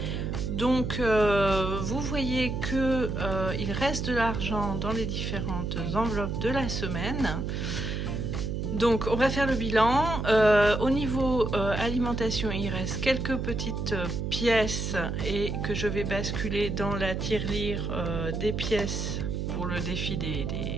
Donc vous voyez que il reste de l'argent dans les différentes enveloppes de la semaine. Donc on va faire le bilan. Au niveau alimentation, il reste quelques petites pièces et que je vais basculer dans la tirelire des pièces pour le défi des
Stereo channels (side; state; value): right; noise; hum, 2 dB below the sound